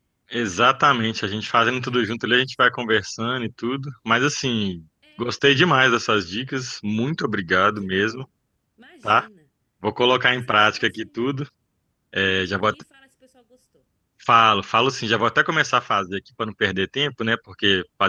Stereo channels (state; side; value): identical; both; correlation 1.00